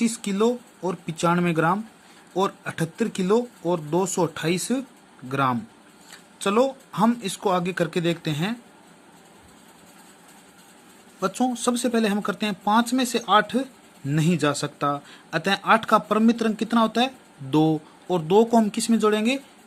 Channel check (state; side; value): identical; both; correlation 1.00